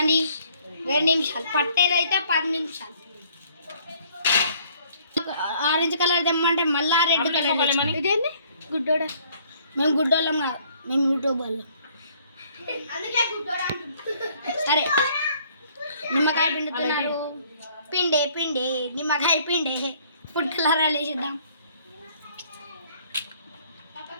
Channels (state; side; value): inverted; both; correlation -0.61